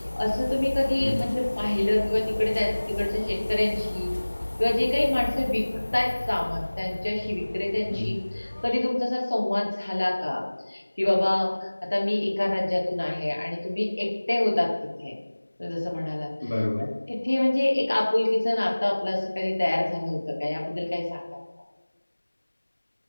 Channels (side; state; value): both; inverted; correlation -1.00